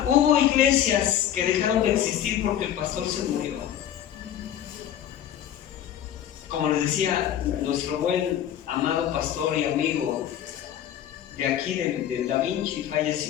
hubo iglesias que dejaron de existir porque el pastor se murió. Como les decía, nuestro buen amado pastor y amigo de aquí, del Da Vinci,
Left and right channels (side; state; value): right; quieter; 10.6 dB